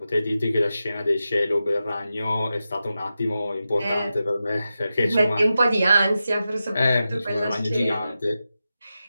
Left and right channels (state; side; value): inverted; both; correlation -0.91